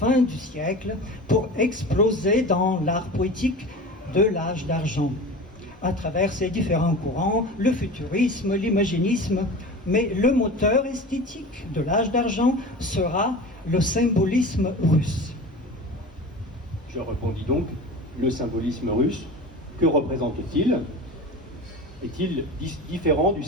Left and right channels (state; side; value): normal; both; correlation 0.34